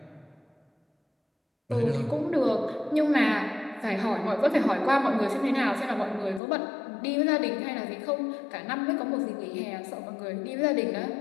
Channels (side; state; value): right; drops out; at 6.4 s